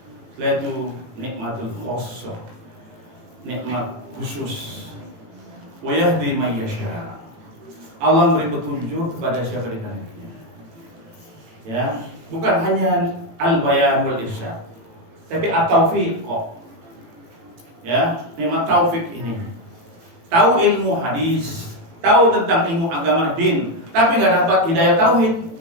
Setelah itu nikmatul khossah, nikmat khusus. Wa yahdi may yasha. Allah memberi petunjuk kepada siapa dikehendakinya. Ya, bukan hanya al-bayan wal irsyad, tapi at-taufiq. Ya, nikmat taufik ini. Tahu ilmu hadis, tahu tentang ilmu agama din, tapi nggak dapat hidayah tauhid,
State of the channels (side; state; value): left; late; 18 ms